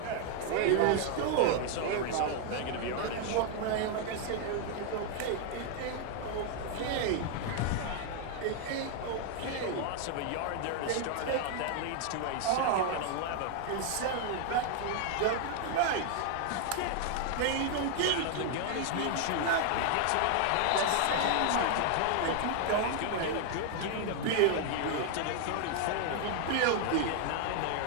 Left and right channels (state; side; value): different; both; correlation 0.00